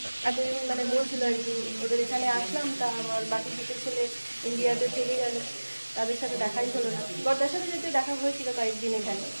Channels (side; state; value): both; inverted; correlation -1.00